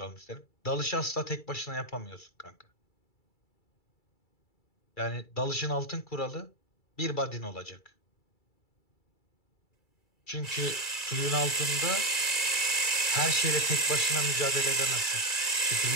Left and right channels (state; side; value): late; right; 2.3 ms